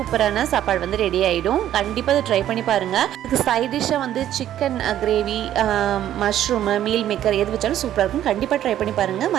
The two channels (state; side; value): quieter; left; 11.8 dB